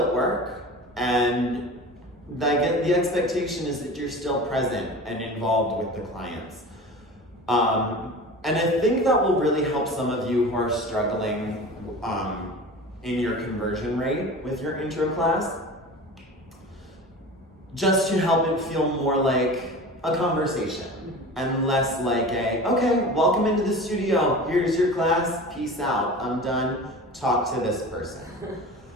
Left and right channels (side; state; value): both; normal; correlation 0.35